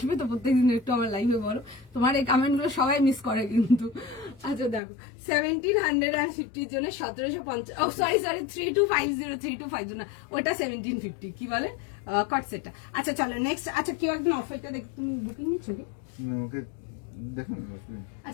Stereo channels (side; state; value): right; drops out; at 4.8 s